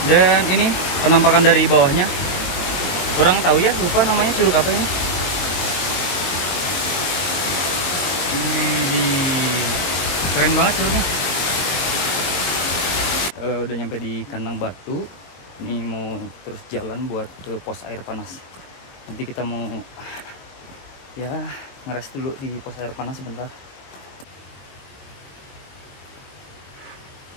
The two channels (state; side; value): late; right; 22 ms